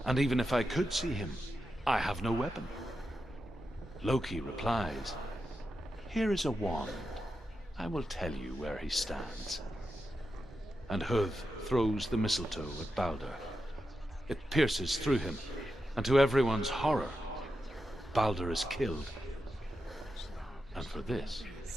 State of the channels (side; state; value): both; normal; correlation 0.89